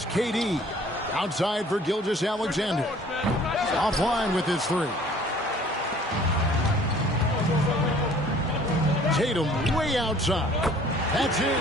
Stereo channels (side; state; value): both; normal; correlation 0.53